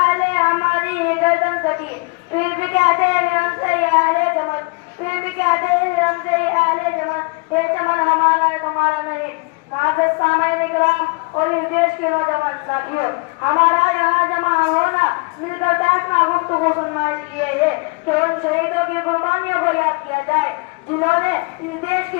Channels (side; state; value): right; quieter; 29.7 dB